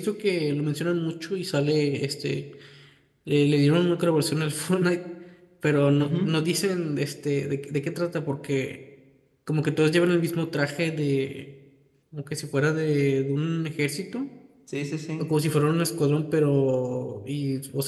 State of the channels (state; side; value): identical; both; correlation 1.00